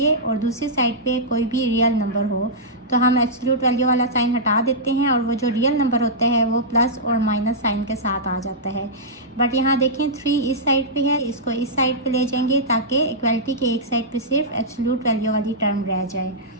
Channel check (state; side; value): normal; both; correlation -0.12